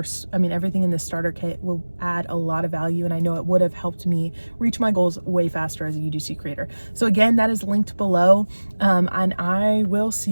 everything in this starter kit will add a lot of value, and I know it would have helped me reach my goals way faster as a UGC creator. So again, that is linked below, and I will see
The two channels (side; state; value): both; inverted; correlation -1.00